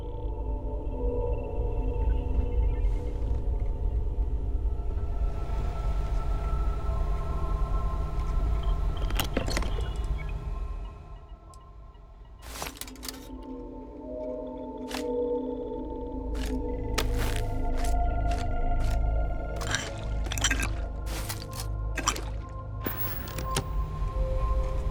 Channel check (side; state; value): both; identical; correlation 1.00